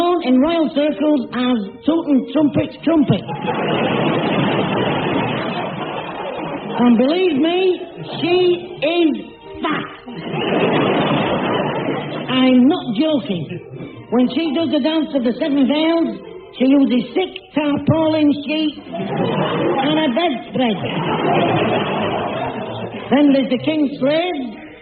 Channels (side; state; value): both; identical; correlation 1.00